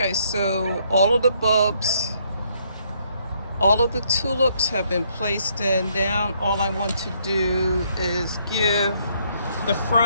so all of the bulbs, all of the tulips have been placed in. Now all I want to do is give the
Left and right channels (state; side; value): inverted; both; correlation -0.70